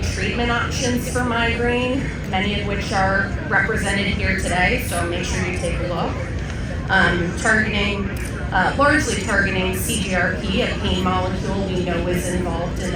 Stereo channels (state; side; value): identical; both; correlation 1.00